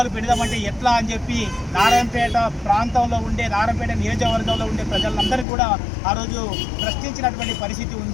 పెడదామంటే ఎట్లా అని చెప్పి నారాయణపేట ప్రాంతంలో ఉండే, నారాయణపేట నియోజకవర్గంలో ఉండే ప్రజలందరూ కూడా ఆ రోజు ప్రశ్నించినటువంటి పరిస్థితి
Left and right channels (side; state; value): right; drops out; at 5.5 s